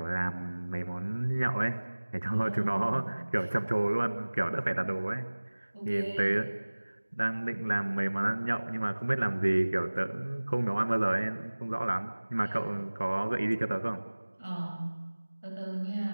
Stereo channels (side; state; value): both; inverted; correlation -1.00